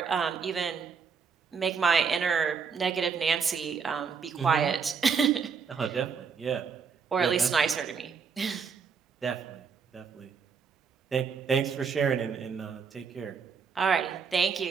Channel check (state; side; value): quieter; left; 5.9 dB